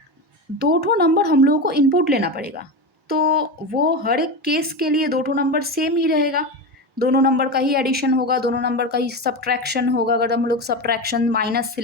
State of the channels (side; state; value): both; normal; correlation 0.20